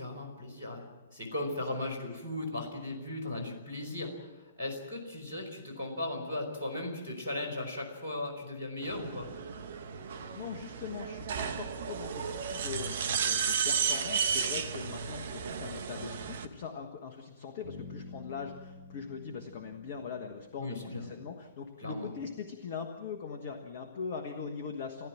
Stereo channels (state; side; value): inverted; both; correlation -0.56